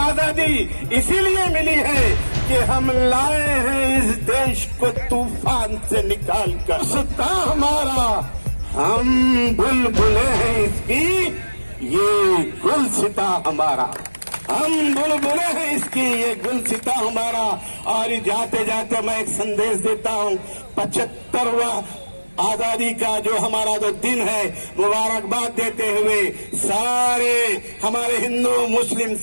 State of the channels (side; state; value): both; inverted; correlation -1.00